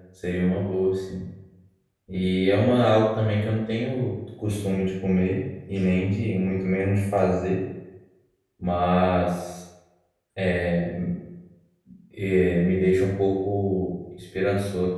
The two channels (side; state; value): both; identical; correlation 1.00